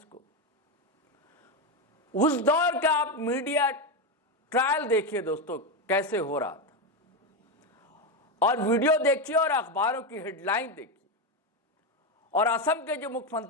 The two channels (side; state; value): both; normal; correlation 0.10